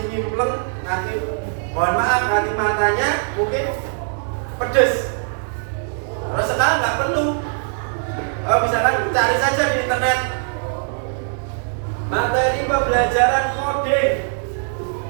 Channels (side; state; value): left; silent; 65 dB below the other